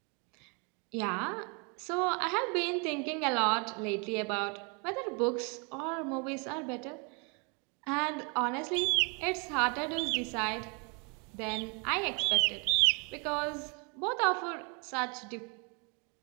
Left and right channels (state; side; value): quieter; left; 33.6 dB